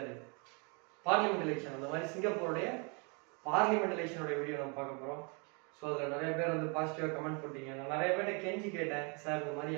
பார்லிமெண்ட் எலெக்ஷன், அந்த மாதிரி சிங்கப்பூருடைய பார்லிமெண்ட் எலெக்ஷனுடைய வீடியோ நம்ம பார்க்க போகிறோம். ஸோ அதில் நிறைய பேர் வந்து பாசிட்டிவாக கமெண்ட் போட்டீங்க. நான் நிறைய பேர்கிட்ட கெஞ்சி கேட்டேன், சார் இந்த மாதிரி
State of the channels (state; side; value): quieter; left; 34.1 dB